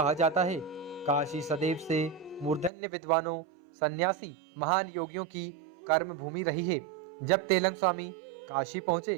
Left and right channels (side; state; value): left; drops out; at 2.7 s